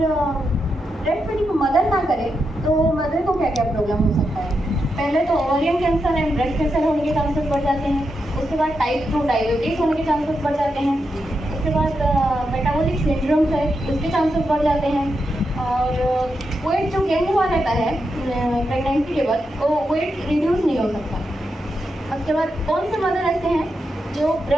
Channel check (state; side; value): normal; both; correlation 0.85